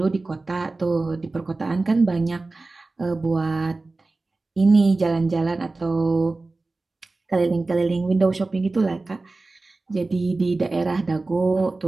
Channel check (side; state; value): left; quieter; 3.4 dB